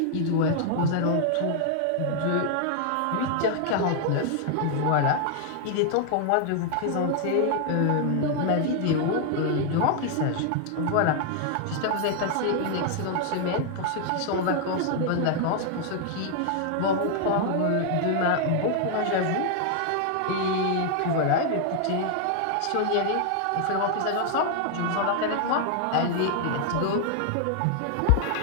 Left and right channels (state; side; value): different; both; correlation 0.00